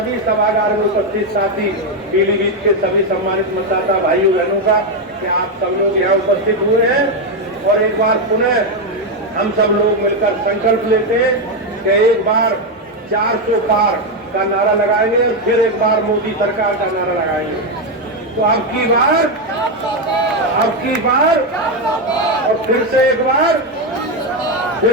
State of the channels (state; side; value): normal; both; correlation 0.06